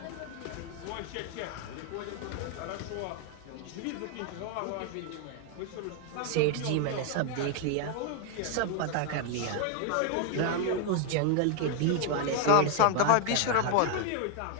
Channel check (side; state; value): both; different; correlation 0.00